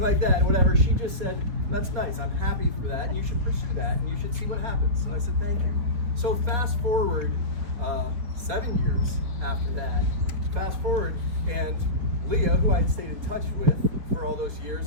like that, whatever. She just said, that's nice. I'm happy for that. And you should pursue that. And you should see what happens. So I said, thank you. So fast forward 7 years after that, and Leah, who I had stayed in touch with for all those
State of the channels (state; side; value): late; left; 4.3 ms